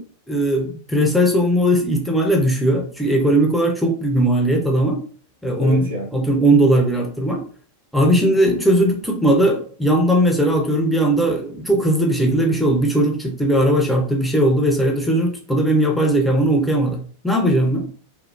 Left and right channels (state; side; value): normal; both; correlation 0.46